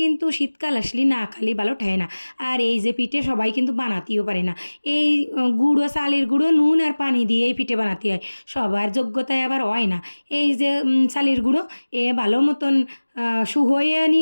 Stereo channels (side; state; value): both; inverted; correlation -1.00